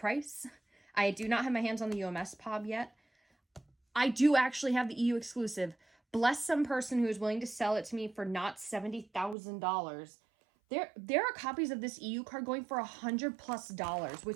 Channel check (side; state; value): left; drops out; at 9.3 s